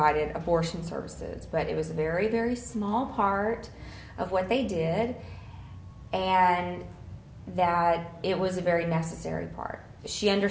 abortion services. But it was a very, very small part of what they did, and that it was a very necessary part. She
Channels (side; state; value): both; identical; correlation 1.00